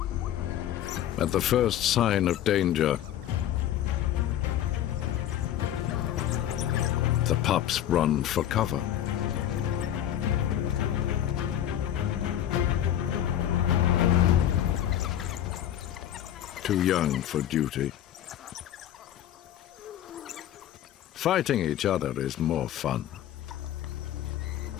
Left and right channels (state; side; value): quieter; right; 11.3 dB